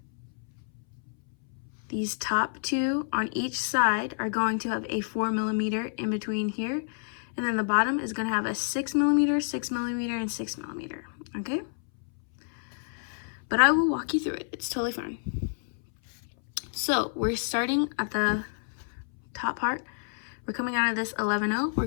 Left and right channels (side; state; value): right; silent; 59 dB below the other